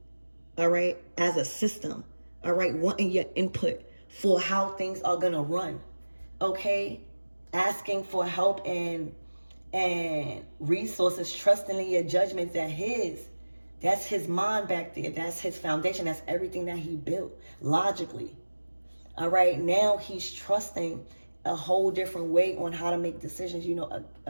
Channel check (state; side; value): inverted; both; correlation -1.00